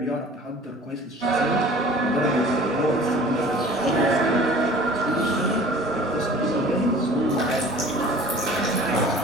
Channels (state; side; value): normal; both; correlation 0.46